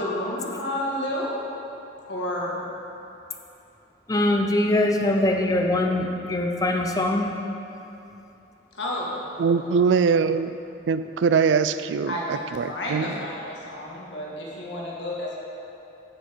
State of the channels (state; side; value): normal; both; correlation 0.27